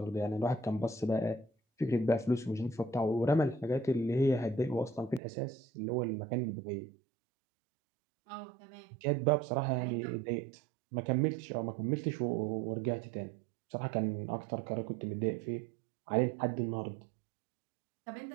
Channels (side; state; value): left; drops out; at 5.2 s